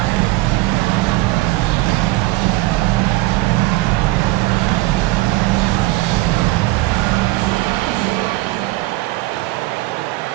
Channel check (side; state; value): left; quieter; 19.7 dB